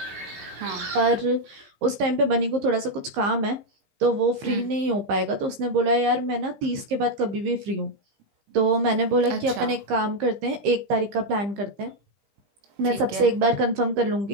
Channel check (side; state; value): left; late; 15 ms